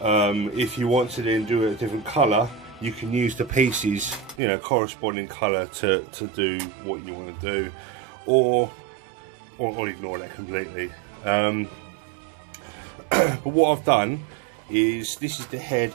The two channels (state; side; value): drops out; left; at 4.4 s